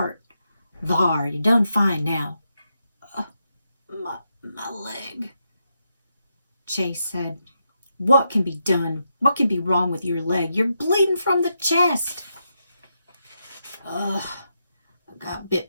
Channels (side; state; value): both; inverted; correlation -0.84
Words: Thar, you done fine now. My leg. Chase said, what can be done? What can be wrong with your leg? You're bleeding from the chest. I got